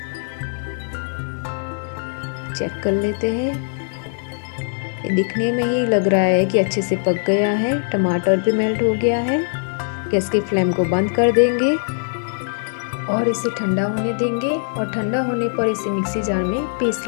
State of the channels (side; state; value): right; silent; 61 dB below the other